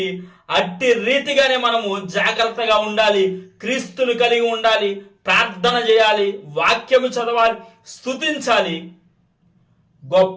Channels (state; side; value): identical; both; correlation 1.00